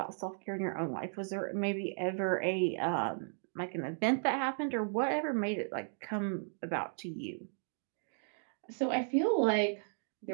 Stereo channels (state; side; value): silent; left; digital silence